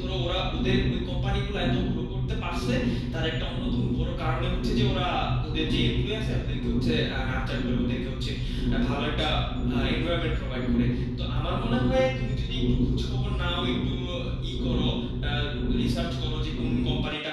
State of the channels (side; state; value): both; identical; correlation 1.00